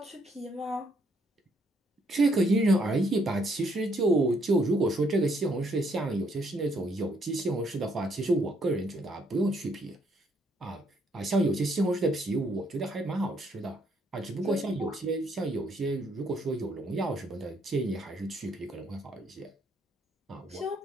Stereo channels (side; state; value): both; normal; correlation 0.71